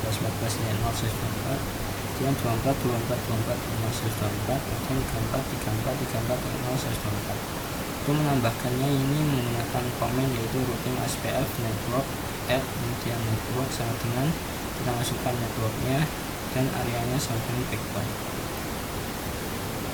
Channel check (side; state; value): both; identical; correlation 1.00